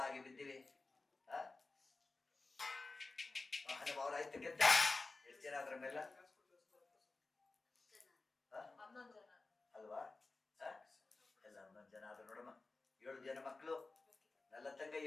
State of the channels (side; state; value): right; quieter; 3.5 dB